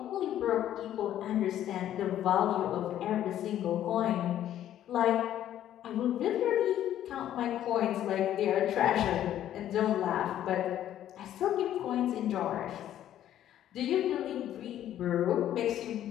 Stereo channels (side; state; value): right; quieter; 11.7 dB